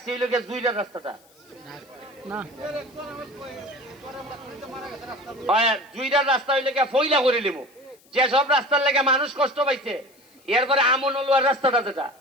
হইল গিয়ে জুইলার রাস্তাটা না, জুইলার রাস্তা হইলে গিয়ে ফইলা করে নিব। যেসব রাস্তার লেগে মানুষ কষ্ট পাইছে, এরপরে আমনলুয়ার রাস্তাটা যেটা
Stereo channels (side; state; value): left; noise; hiss, 30 dB below the sound